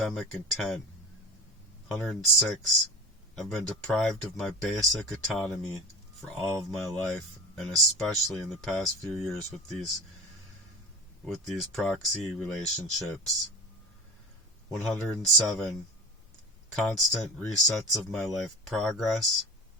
intent. 106. I've been deprived of my basic autonomy for all of my life, and especially in the past few years with these proxy relationships. 107. Constant resets of my life progress.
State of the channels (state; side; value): normal; both; correlation 0.32